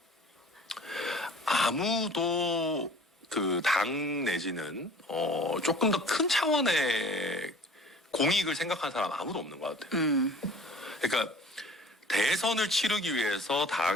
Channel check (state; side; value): normal; both; correlation 0.47